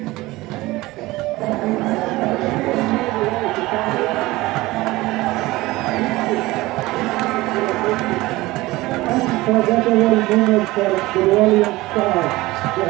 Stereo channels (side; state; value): left; quieter; 19.6 dB